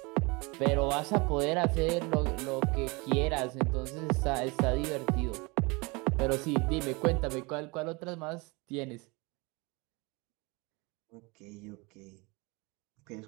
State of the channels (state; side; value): quieter; left; 27.1 dB